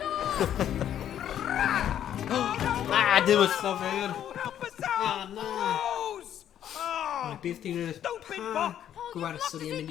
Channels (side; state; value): right; quieter; 10.4 dB